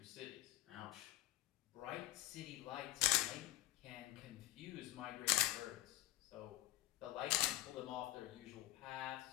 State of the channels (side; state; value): right; quieter; 17.1 dB